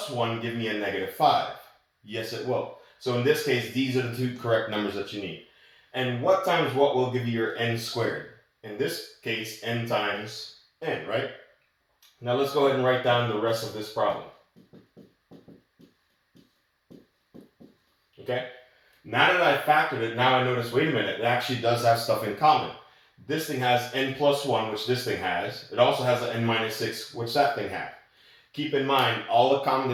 1 give me a negative 5? Yes, it will. So in this case, these are the two correct numbers that you need. And what times what will give you your n squared? In this case, n times n, right? Now let's go ahead and write down the rest of this problem. Okay? Now that I factored it, now I notice, wait a minute, it actually does have stuff in common. This thing has n plus 1, which this thing has. It also has an n minus 6, which that thing had. Keep in mind, all the common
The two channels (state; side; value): identical; both; correlation 1.00